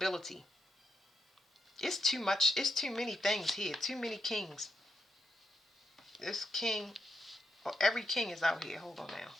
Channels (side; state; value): both; normal; correlation 0.82